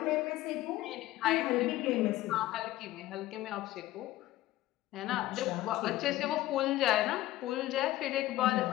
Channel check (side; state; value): right; quieter; 15.8 dB